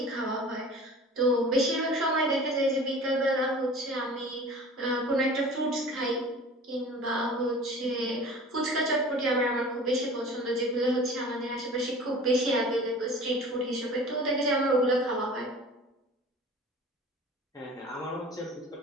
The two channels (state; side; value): normal; both; correlation 0.42